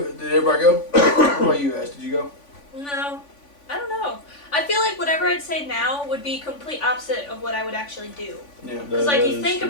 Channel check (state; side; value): late; right; 3.5 ms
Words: did everybody go? What about you guys? Did you go? No. I don't know. I feel like whatever I'd say now would be complete opposite of what I would actually do. Yeah. Because like you think